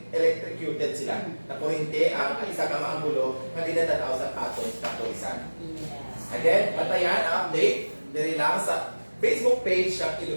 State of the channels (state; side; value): inverted; both; correlation -1.00